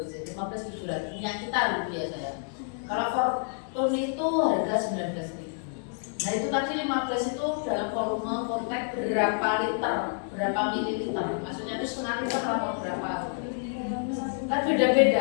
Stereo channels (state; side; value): silent; right; 59 dB below the other